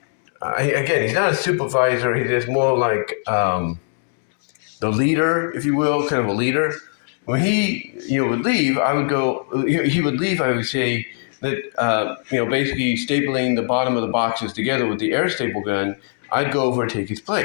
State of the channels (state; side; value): silent; right; 65 dB below the other